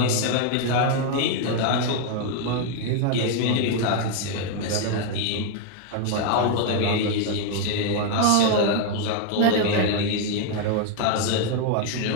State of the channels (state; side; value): different; both; correlation 0.00